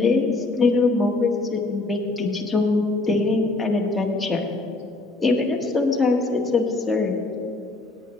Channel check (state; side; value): quieter; right; 3.1 dB